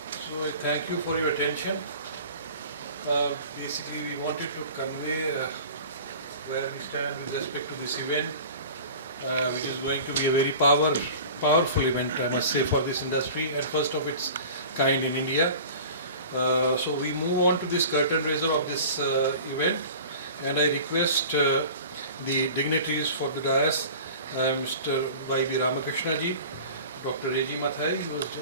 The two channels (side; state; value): both; inverted; correlation -0.40